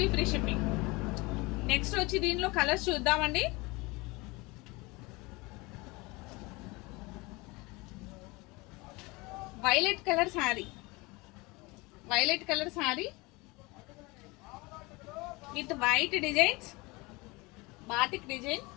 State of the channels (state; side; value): quieter; right; 24.4 dB